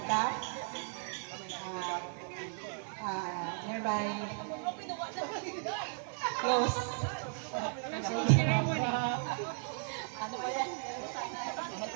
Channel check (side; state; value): left; silent; 54 dB below the other